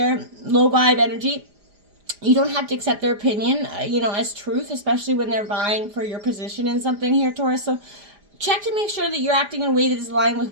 low vibe energy. You don't have to accept their opinion, as truth, especially when they're vying for your position in something here, Taurus. So check to make sure that you're acting in a way that is aligned with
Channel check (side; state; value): left; late; 4.9 ms